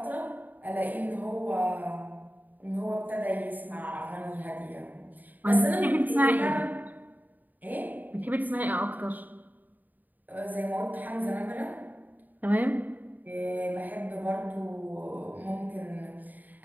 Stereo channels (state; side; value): late; left; 0.084 ms